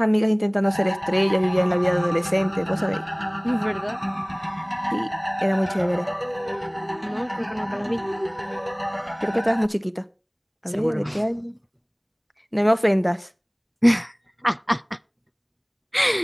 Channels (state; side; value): identical; both; correlation 1.00